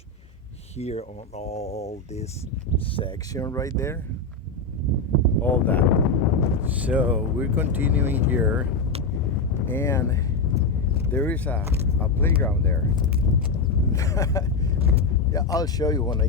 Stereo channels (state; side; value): quieter; right; 3.7 dB